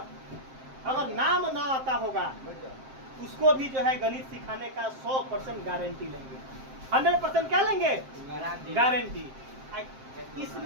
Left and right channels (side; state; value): left; late; 7.6 ms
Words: अगर नाम ना आता होगा उसको भी जो है गणित सिखाने का 100% गारंटी लेंगे। 100% क्या लेंगे? गारंटी।